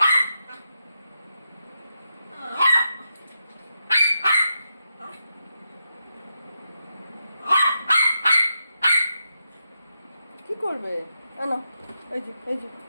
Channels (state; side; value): inverted; both; correlation -0.85